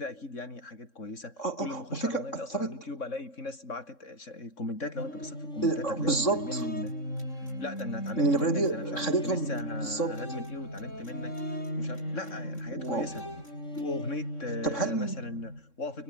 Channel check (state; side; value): late; right; 3.6 ms